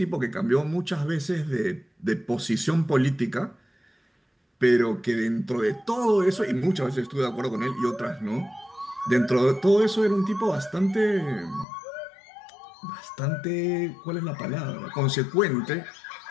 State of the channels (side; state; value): right; drops out; at 11.7 s